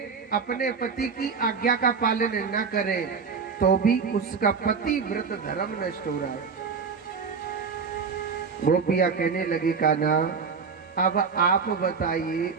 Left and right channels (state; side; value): quieter; left; 5.6 dB